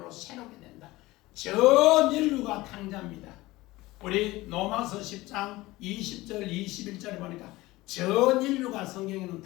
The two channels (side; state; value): right; quieter; 19.4 dB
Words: 새롭게 된다. 전 인류가 탕자입니다. 우리 로마서 10장 20절 21절에 보니까 전 인류가 성경에는